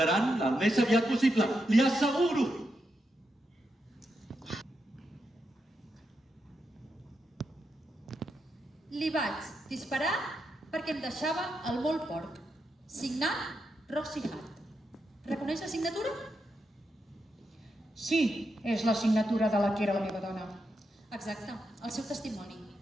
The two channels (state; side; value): normal; both; correlation 0.85